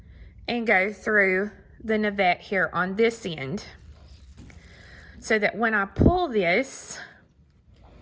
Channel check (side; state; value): both; identical; correlation 1.00